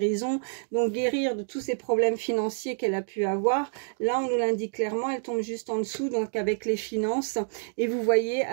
Donc, guérir de tous ces problèmes financiers qu'elle a pu avoir. Là, on nous l'indique clairement, elle tombe juste en dessous, donc avec les finances. Et vous voyez,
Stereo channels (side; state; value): left; silent; digital silence